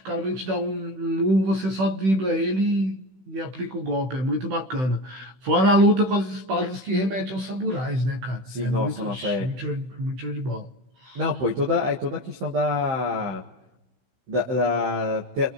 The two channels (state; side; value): late; left; 16 ms